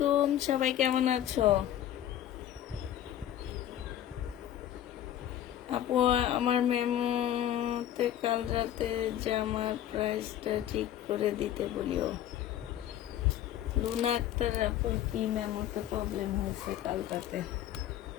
সবাই কেমন আছো? আপু আমার মেমোতে কাল রাতে জামার প্রাইসটা ঠিক করে দিতে বলিও। লুনা আক্তার আপুর কি মেমোতে প্রবলেম হয়েছে কাল রাতে?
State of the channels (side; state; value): right; quieter; 11.8 dB